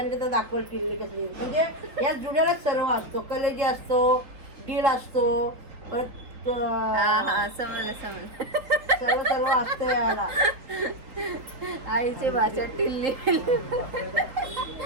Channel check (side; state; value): left; late; 3.9 ms